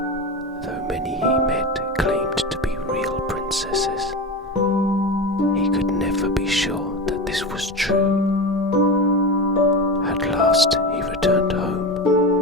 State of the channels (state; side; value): normal; both; correlation 0.23